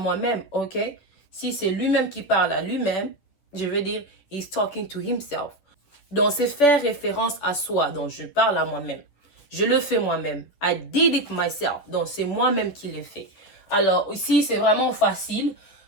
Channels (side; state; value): right; late; 11 ms